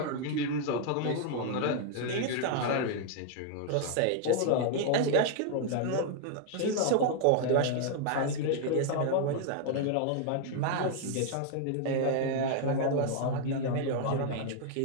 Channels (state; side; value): different; both; correlation 0.00